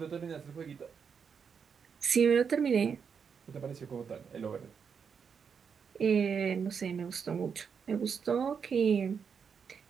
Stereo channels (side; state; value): left; quieter; 6.5 dB